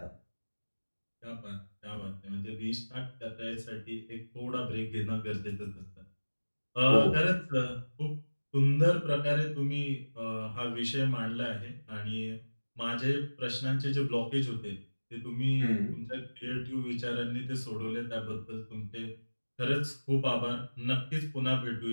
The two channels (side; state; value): both; inverted; correlation -1.00